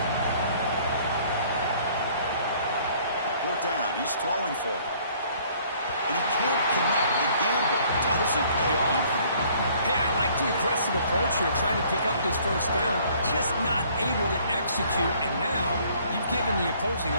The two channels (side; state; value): both; inverted; correlation -0.59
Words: Fourth down, he's throwing for it. And he can't connect. The gamble doesn't pay off. Hey, I like the aggressive approach here, trying to pick up this first down, just not able to execute, and now you've given the opposing